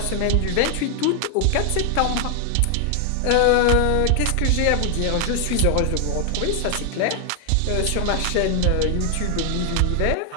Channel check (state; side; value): different; both; correlation 0.00